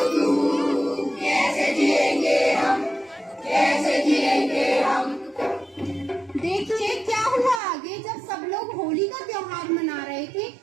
तू, कैसे जिएंगे हम, कैसे जिएंगे हम। देखिए क्या हुआ आगे, जब सब लोग होली का त्योहार मना रहे थे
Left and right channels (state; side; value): drops out; left; at 7.6 s